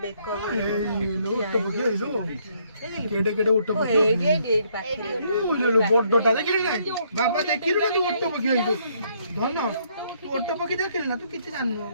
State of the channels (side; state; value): both; inverted; correlation -0.69